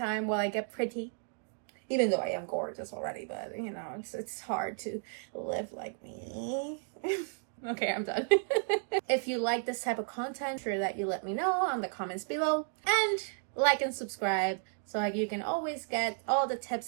while I get pretty, even though I am gorgeous already, but you know, it's hard to live like me. Okay, I'm done. If you like this type of content, sure that you let me know on the comments below, and like and subscribe so you can always get all the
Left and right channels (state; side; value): silent; left; 56 dB below the other